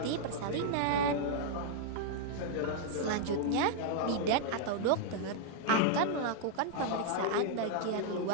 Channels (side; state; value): both; different; correlation -0.01